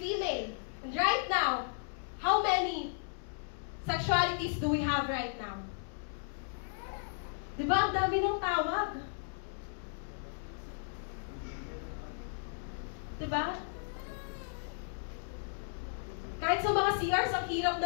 female. And right now, How many sexualities do we have right now? Diba? Ang dami ng tawag. Diba? Kahit sa mga CRs, ang hirap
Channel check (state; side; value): silent; right; digital silence